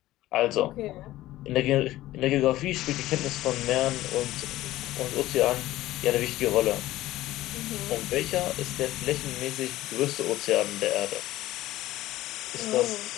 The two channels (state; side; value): quieter; right; 15.9 dB